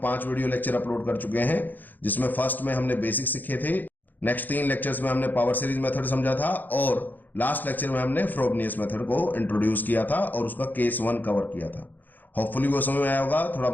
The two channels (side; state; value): right; late; 0.086 ms